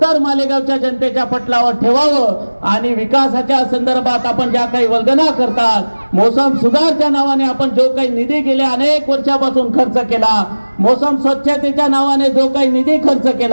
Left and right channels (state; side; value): inverted; both; correlation -1.00